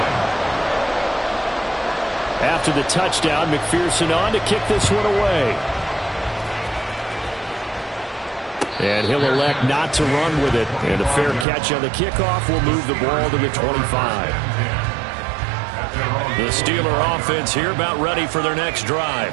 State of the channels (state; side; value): drops out; left; at 11.5 s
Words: After the touchdown, McPherson on to kick this one away. And he'll elect not to run with it. And a fair catch on the kickoff will move the ball to the 25. The Steeler offense here about ready for their next